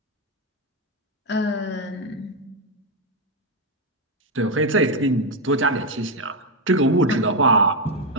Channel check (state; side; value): normal; both; correlation 0.04